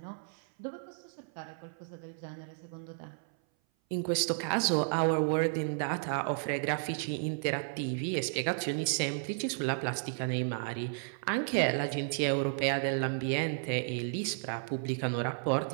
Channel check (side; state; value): left; silent; 56 dB below the other